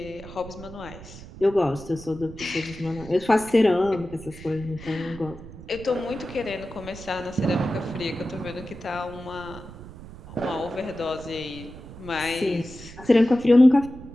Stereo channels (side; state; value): right; noise; rumble, 16 dB below the sound